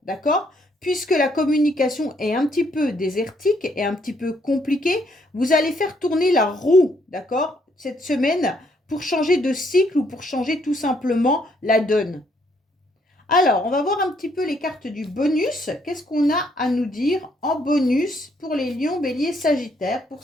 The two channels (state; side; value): normal; both; correlation 0.70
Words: d'accord? Puisque la communication est un petit peu désertique et un petit peu compliquée, vous allez faire tourner la roue, d'accord? Cette semaine, pour changer de cycle ou pour changer tout simplement la donne. Alors, on va voir un petit peu les cartes du bonus. Qu'est-ce qu'on a à nous dire en bonus pour les lions, béliers, sagittaires pour